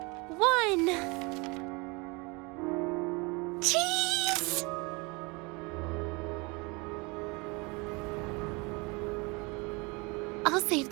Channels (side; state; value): left; quieter; 27.8 dB